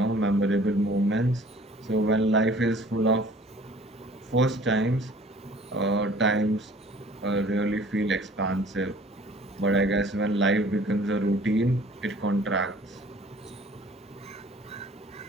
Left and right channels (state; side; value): normal; both; correlation 0.52